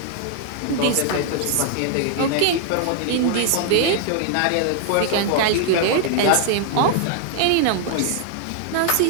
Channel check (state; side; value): different; both; correlation 0.00